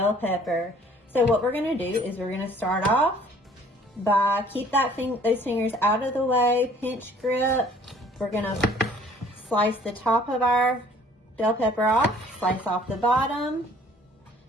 pepper. So what we're going to do is we're going to start off by keep those fingers out of the way, pinch grip. We're going to slice the top of our bell pepper off, slice off the bottom.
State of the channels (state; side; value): normal; both; correlation 0.56